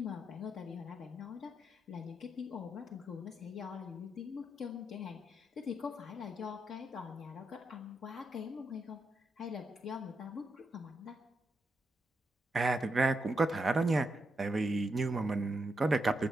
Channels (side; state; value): both; normal; correlation 0.83